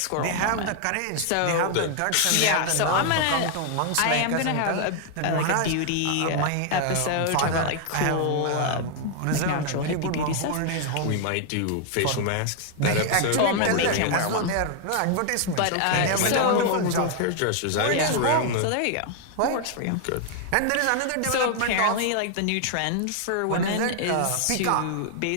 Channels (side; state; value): both; different; correlation 0.00